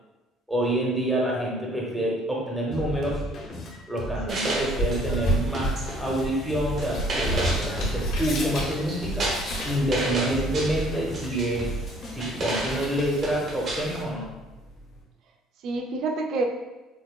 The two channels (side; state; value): both; normal; correlation 0.59